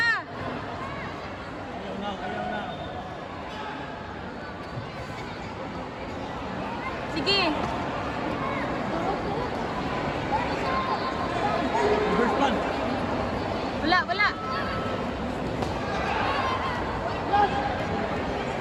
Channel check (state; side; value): identical; both; correlation 1.00